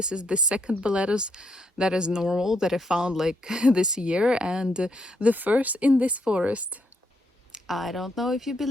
is the second Boletus that is normal that I found like this year, and the first in this forest. I don't know if you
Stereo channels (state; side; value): normal; both; correlation 0.76